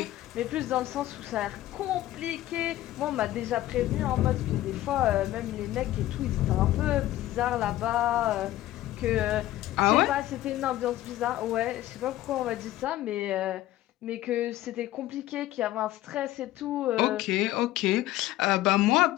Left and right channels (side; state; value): right; quieter; 14.9 dB